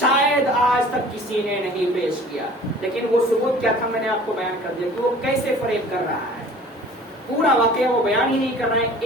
آج تک کسی نے نہیں پیش کیا، لیکن وہ ثبوت کیا تھا میں نے آپ کو بیان کر دیا کہ وہ کیسے فریب کر رہا ہے، پورا واقعہ وہ بیان ہی نہیں کر رہا ہے،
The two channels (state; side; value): normal; both; correlation 0.47